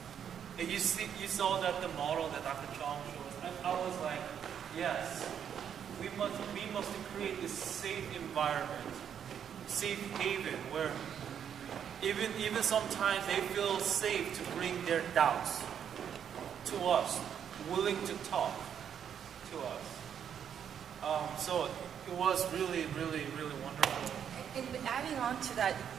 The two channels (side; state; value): left; quieter; 8.5 dB